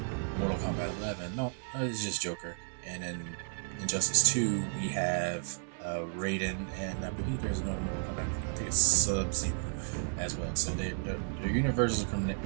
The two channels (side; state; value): left; silent; 56 dB below the other